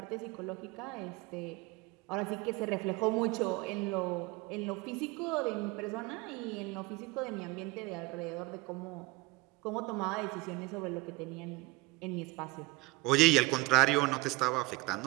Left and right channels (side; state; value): left; quieter; 22.9 dB